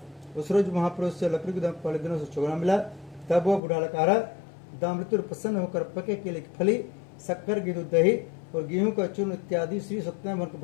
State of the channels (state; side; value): drops out; right; at 3.6 s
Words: उस रोज महापुरुष से लकड़ी को पहले दिनों से चुगना मिला। तब वह बूढ़ा लकड़हारा दामृत्यु प्रसन्न होकर पके केले की फली, शक्कर, घी, दूध, दही और गेहूं का चूर्ण इत्यादि श्री सत्यनारायण भगवान के